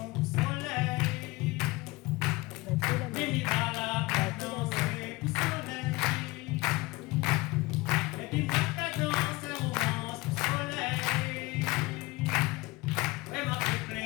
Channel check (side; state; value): right; quieter; 21.7 dB